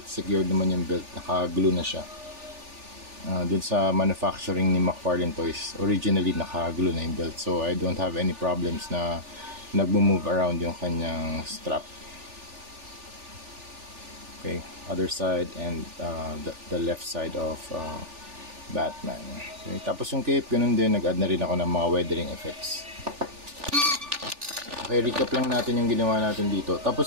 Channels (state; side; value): late; left; 3.4 ms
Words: secured naman yung belt, naka-glue na siya. Dun sa manufacturing ni McFarlane Toys, originally naka-glue na yung belt, so I don't have any problems na nag-move around yung kanyang strap. Okay, other side and the left side of Batman. Okay, tapos yung cape, ganun din, nag-add na rin ako ng mga weathering effects. Okay, recap lang natin yung ginawa natin dito.